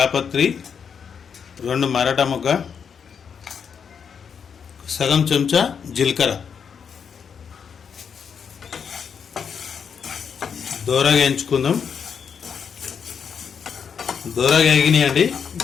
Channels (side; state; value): right; quieter; 6.9 dB